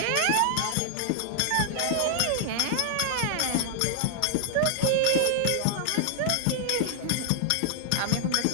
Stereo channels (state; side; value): different; both; correlation -0.01